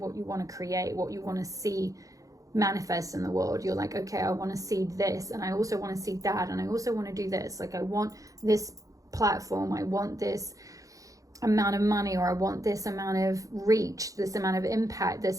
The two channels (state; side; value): late; left; 0.16 ms